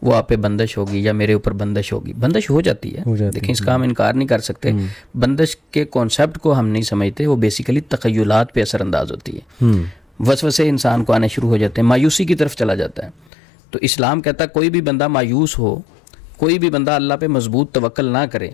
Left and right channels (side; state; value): right; drops out; at 13.3 s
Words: وہ آپ پہ بندش ہوگی یا میرے اوپر بندش ہوگی، بندش ہو جاتی ہے. دیکھیں اس کا ہم انکار نہیں کر سکتے. بندش کے کانسیپٹ کو ہم نہیں سمجھتے، وہ بیسیکلی تخیلات پہ اثر انداز ہوتی ہے. وسوسے انسان کو آنے شروع ہو جاتے ہیں، مایوسی کی طرف چلا جاتا ہے. تو اسلام کہتا ہے کوئی بھی بندہ مایوس ہو، کوئی بھی بندہ اللہ پہ مضبوط توکل نہ کرے